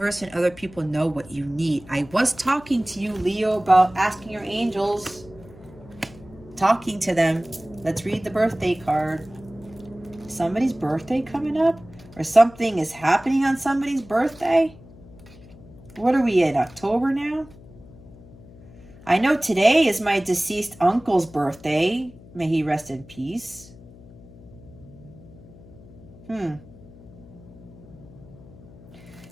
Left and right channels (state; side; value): noise; left; hum, 20 dB below the sound